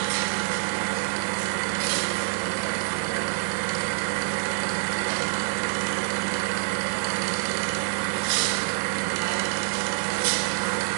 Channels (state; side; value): silent; left; digital silence